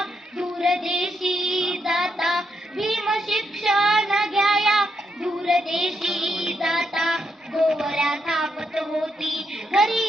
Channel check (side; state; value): both; normal; correlation 0.81